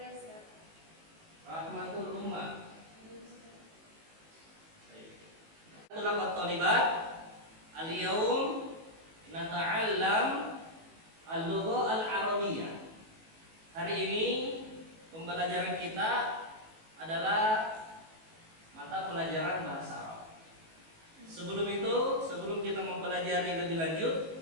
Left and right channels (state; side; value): late; left; 18 ms